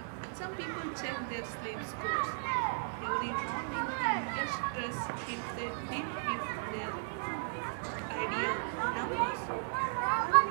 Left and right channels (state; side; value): silent; left; digital silence